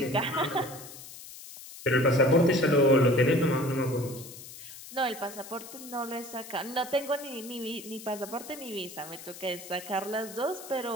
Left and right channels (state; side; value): noise; left; hiss, 15 dB below the sound